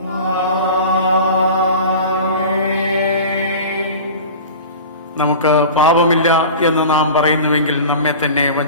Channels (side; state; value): both; inverted; correlation -0.36